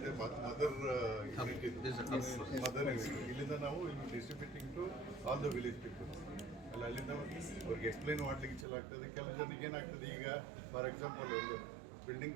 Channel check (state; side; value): drops out; left; at 8.7 s